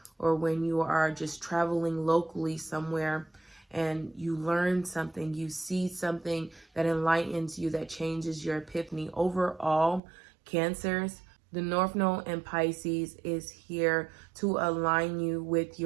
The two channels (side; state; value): left; drops out; at 10.0 s